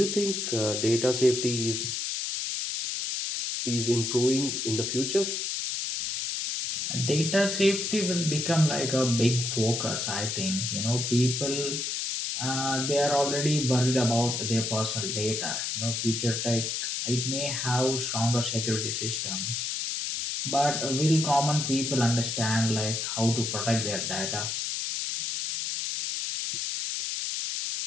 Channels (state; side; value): noise; left; hiss, 2 dB below the sound